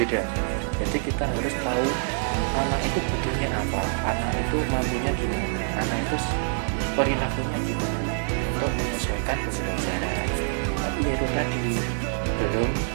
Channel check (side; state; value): left; silent; 61 dB below the other